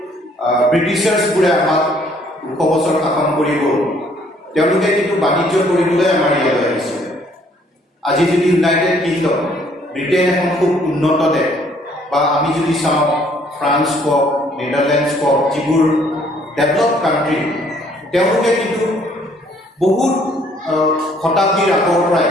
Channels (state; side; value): normal; both; correlation 0.63